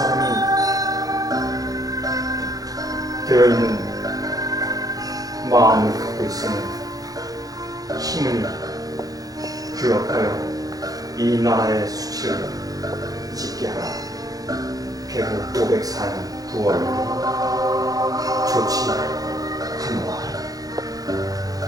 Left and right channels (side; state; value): left; late; 0.18 ms